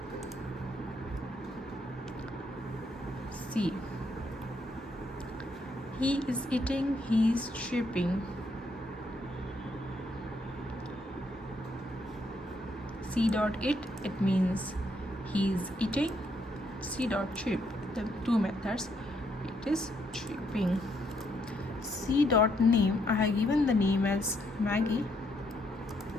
See, he is eating, he is shipping. C dot it, it means he is eating. C dot ship, the two methods, it is shipping. C dot name, I have given the name as Maggie.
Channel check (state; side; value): normal; both; correlation 0.74